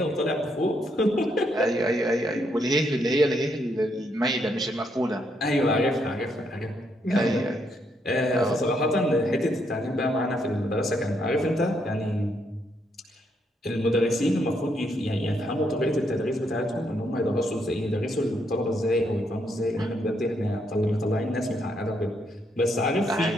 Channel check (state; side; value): normal; both; correlation 0.76